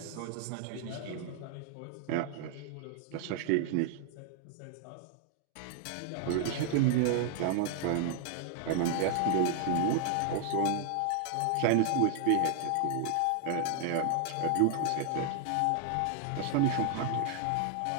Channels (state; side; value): different; both; correlation 0.00